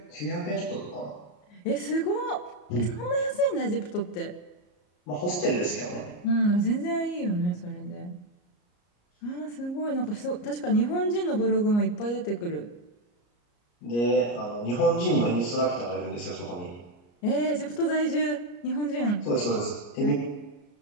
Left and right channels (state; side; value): late; right; 34 ms